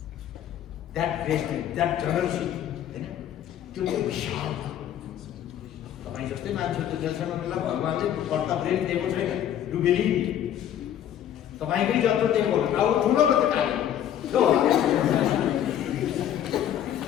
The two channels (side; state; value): right; quieter; 10.6 dB